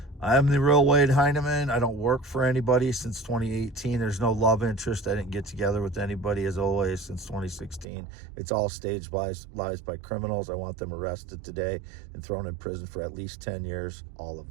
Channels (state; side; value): drops out; left; at 7.9 s